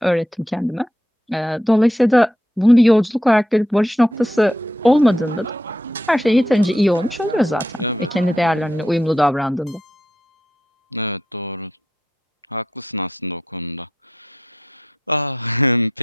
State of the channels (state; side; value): normal; both; correlation 0.80